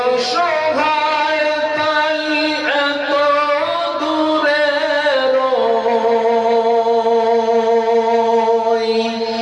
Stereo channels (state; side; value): identical; both; correlation 1.00